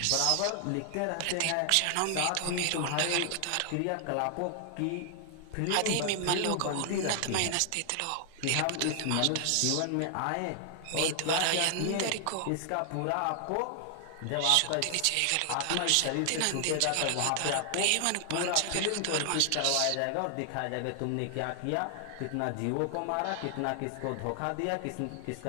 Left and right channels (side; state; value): both; different; correlation 0.00